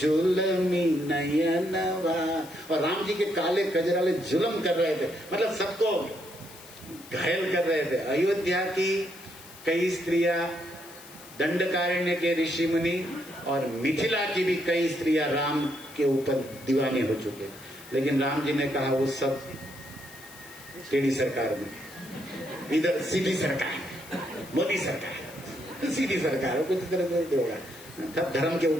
नयनवा। और राम जी के काले कजराले जुलम कर रहे थे, मतलब सबको घायल कर रहे थे। अयोध्या की कई स्त्रियां, दंडकारण्य के ऋषि मुनि और मिथिला की भी कई स्त्रियां राम के ऊपर दीवानी हो चुके, लेकिन राम जी ने कहा वो सब टेढ़ी सरकार में, इधर सीधी सरकार, मोदी सरकार, सीधी सरकार, कुछ तरह से होगा, तब धर्म के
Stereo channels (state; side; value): noise; left; hiss, 19 dB below the sound